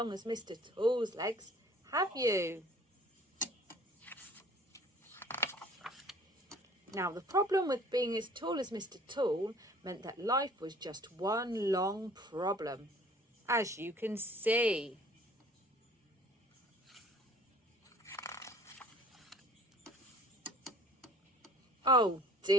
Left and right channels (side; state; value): both; normal; correlation 0.52